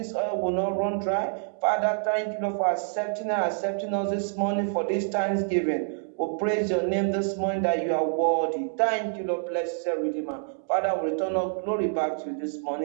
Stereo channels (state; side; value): silent; left; digital silence